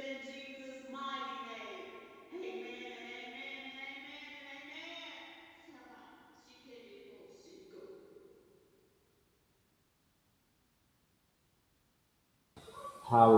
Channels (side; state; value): both; identical; correlation 1.00